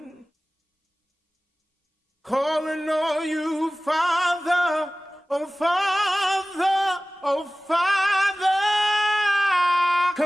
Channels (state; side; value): normal; both; correlation 0.97